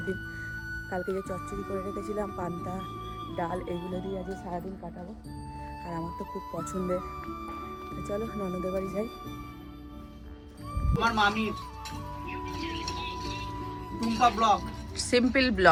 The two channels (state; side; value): identical; both; correlation 1.00